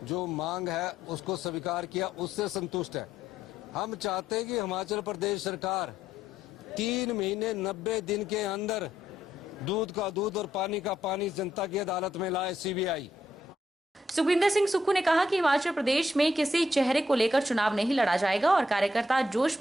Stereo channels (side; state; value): both; normal; correlation 0.75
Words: जो मांग है उसको स्वीकार किया, उससे संतुष्ट है। हम चाहते हैं कि हिमाचल प्रदेश सरकार 3 महीने 90 दिन के अंदर दूध का दूध और पानी का पानी जनता की अदालत में लाए CBI। सुखविंदर सिंह सुक्खू ने कहा कि हिमाचल प्रदेश में किसी चेहरे को लेकर चुनाव नहीं लड़ा जाएगा और कार्यकर्ता जोश